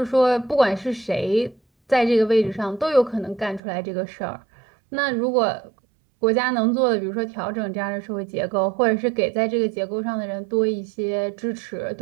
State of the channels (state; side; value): drops out; left; at 3.6 s